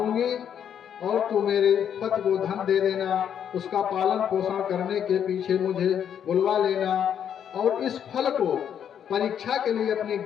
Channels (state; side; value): quieter; right; 8.8 dB